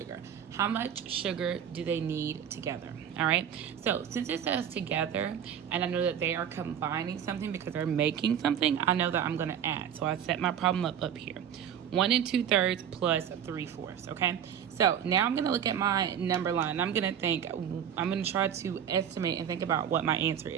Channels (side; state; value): left; quieter; 9.0 dB